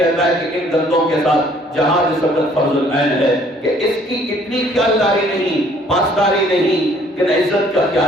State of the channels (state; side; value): normal; both; correlation 0.60